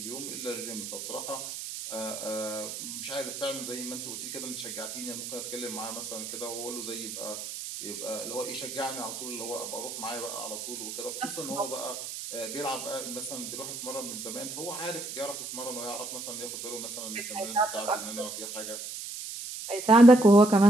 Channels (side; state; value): right; noise; hiss, 7 dB below the sound